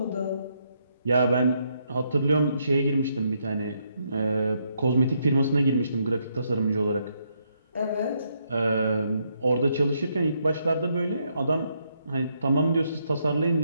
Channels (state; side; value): inverted; both; correlation -0.76